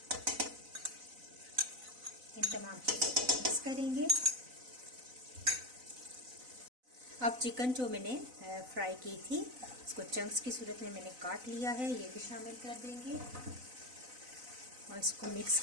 इन तमाम चीज़ों को मिक्स करेंगे। अब चिकन जो मैंने फ्राई की थी इसको चंक्स की सूरत में मैंने काट लिया है, ये भी शामिल कर देंगे और इसको मिक्स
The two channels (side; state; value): left; late; 4.0 ms